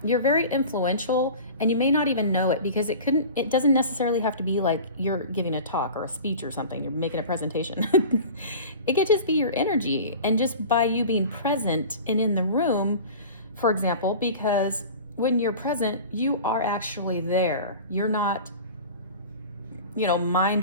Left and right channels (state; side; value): inverted; both; correlation -0.37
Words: you're very influential, and you may not even know it because it doesn't necessarily have to be like you're giving a talk or a speech or something, you're making a presentation. It could just be your energy, and just by you being present and in the room, for example, because when you're present, you are actually there. You're not, mind